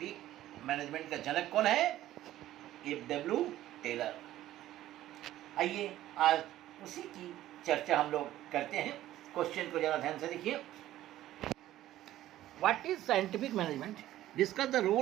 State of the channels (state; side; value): quieter; left; 14.0 dB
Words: मैनेजमेंट का जनक कौन है? FW Taylor. आइए आज उसी की चर्चा हम लोग करते हैं। क्वेश्चन को जरा ध्यान से देखिए। What is scientific management? Discuss the